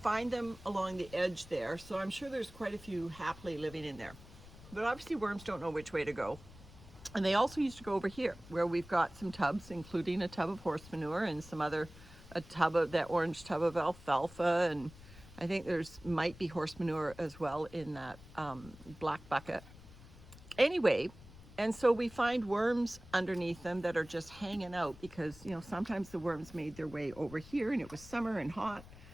them along the edge there. So I'm sure there's quite a few happily living in there. But obviously worms don't know which way to go. And they also used to go over here where we've got some tubs, including a tub of horse manure and some other, a tub of that orange tub of alfalfa. And I think there's might be horse manure as well in that black bucket. Anyway, and so we find worms underneath them that are just hanging out because, you know, sometimes the worms made their way over here and it was summer and hot.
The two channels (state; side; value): noise; left; rumble, 19 dB below the sound